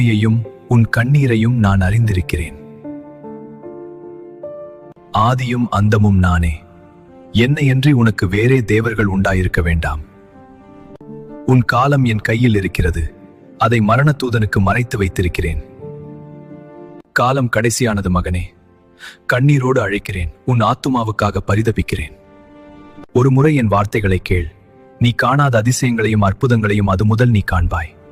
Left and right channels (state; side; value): identical; both; correlation 1.00